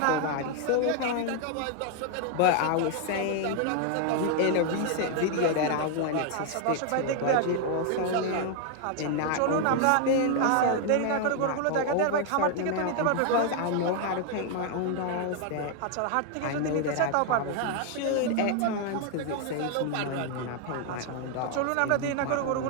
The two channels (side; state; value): both; different; correlation 0.00